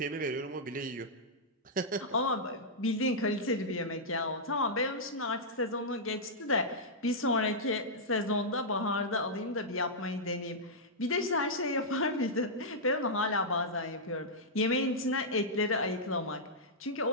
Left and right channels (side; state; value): both; normal; correlation -0.09